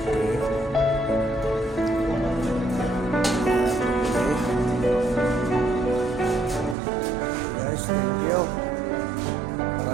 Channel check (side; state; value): left; drops out; at 6.8 s